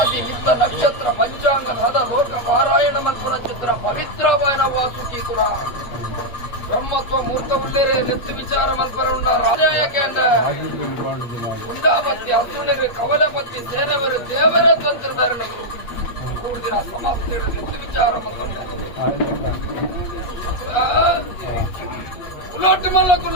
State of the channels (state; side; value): late; right; 8.4 ms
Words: ನಿತ್ತ ನಕ್ಷತ್ರ ಪಂಚಾಂಗದ ಹದ ಲೋಕ ಪಾರಾಯಣ ಮಲ್ಪುರ ಚಿತ್ರ ಪವಿತ್ರವಾಯನ ವಾಸುಕಿ ಕುಲ ಬ್ರಹ್ಮತ್ವ ಮೂರ್ತ ಉಳ್ಳೇರೆ ನೆತ್ತು ವಿಚಾರ ಮಲ್ಪರ ಉಂಡ ರಾಜಾಯಕೇಂಡ ಉಂಡಾಪತ್ತಿ ಅಸುಣಿರು ಕವಲಪತ್ತಿ ಸೇನವರು ದೇವರ ತಂತ್ರಧಾರಣೆಗಳು ಕೂಡಿನ ಸಮಾಪ್ತಿ ನೆತ್ತು ವಿಚಾರ ಮಲ್ಕೊಂಡ ಕುಲಾಟ ಮಲ್ಲ